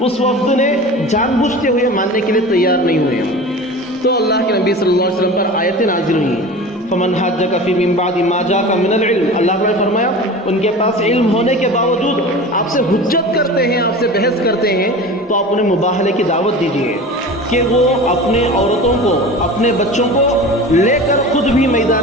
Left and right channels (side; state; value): both; normal; correlation 0.35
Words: وفد نے جان بوجھتے ہوئے ماننے کے لیے تیار نہیں ہوئے۔ تو اللہ کے نبی صلی اللہ علیہ وسلم پر آیتیں نازل ہوئیں، فمن حاجک فی من بعد ما جاءک من العلم۔ اللہ نے فرمایا ان کے پاس علم ہونے کے باوجود آپ سے حجت کرتے ہیں، آپ سے بحث کرتے ہیں، تو آپ انہیں مباہلے کی دعوت دیجیے کہ وہ اپنے عورتوں کو، اپنے بچوں کو لے کر خود بھی میدان